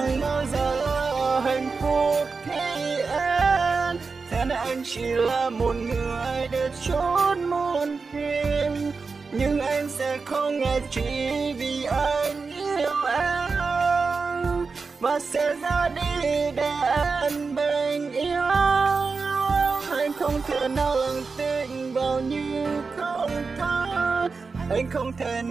bao giờ là hạnh phúc khi em nên anh chỉ là một người để chốt muôn phiền, nhưng anh sẽ không ngại chỉ vì anh yêu em và sẽ ra đi để em bình yên. Anh không thể nào lặng tin vào như không tha, anh không thể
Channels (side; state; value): left; quieter; 4.6 dB